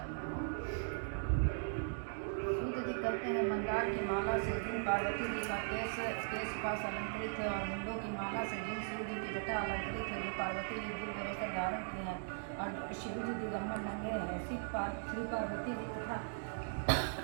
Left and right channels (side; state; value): left; silent; digital silence